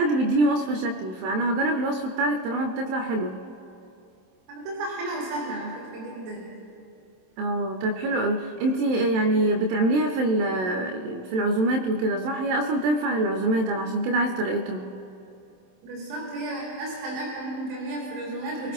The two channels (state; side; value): late; left; 27 ms